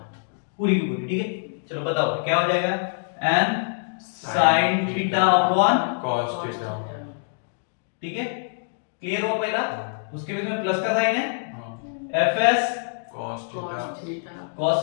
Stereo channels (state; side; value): silent; right; digital silence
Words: पूरी की पूरी, ठीक है। चलो बताओ क्या हो जाएगा, n sin theta upon, cos theta. ठीक है, क्लियर हुआ पहला। उसके बीच में प्लस का साइन है, हाँ, fs cos theta cos